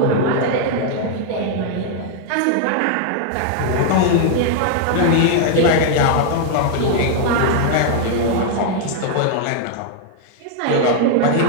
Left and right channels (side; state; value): both; different; correlation 0.00